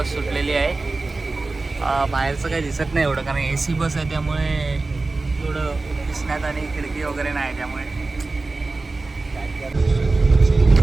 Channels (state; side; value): quieter; left; 3.5 dB